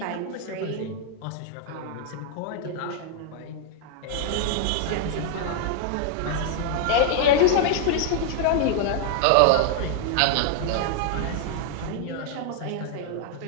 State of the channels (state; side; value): different; both; correlation 0.00